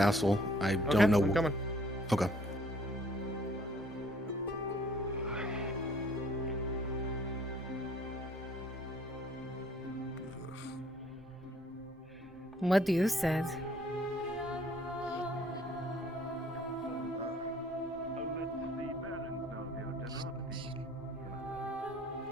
I don't know. I'm coming. Okay. What do you said?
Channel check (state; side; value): normal; both; correlation 0.59